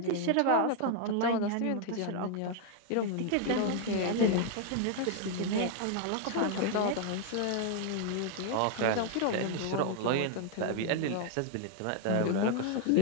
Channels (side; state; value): both; different; correlation 0.00